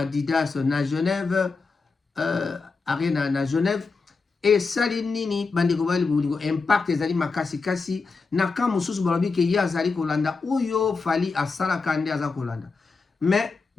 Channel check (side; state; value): right; quieter; 4.4 dB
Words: na Genève arena na Genève et salinini bandeko bali bulingo impact ezali makasi kasi na ka mususu balobi ke ya zali kolanda oyo fali asala kande aza kolanda mais